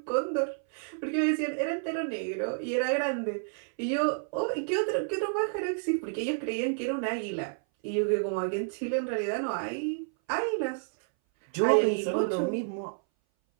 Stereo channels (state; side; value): silent; left; 58 dB below the other